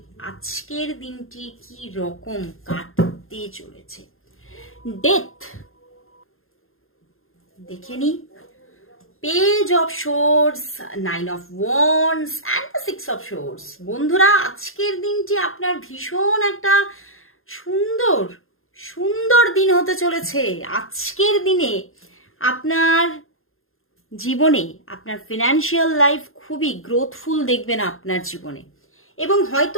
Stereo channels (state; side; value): late; right; 0.61 ms